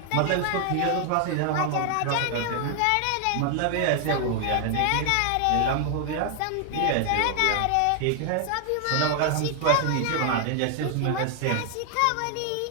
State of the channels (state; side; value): different; both; correlation 0.00